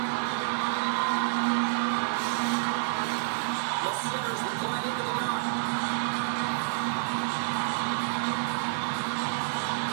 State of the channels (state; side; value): silent; left; 59 dB below the other